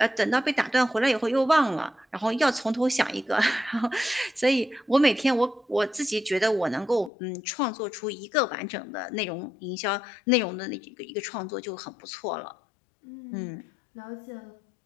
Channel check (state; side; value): drops out; right; at 7.1 s